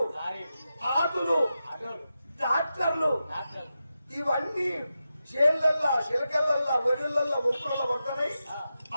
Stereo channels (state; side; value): inverted; both; correlation -0.90